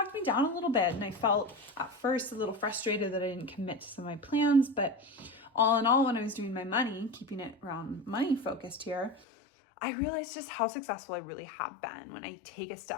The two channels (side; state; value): right; drops out; at 9.2 s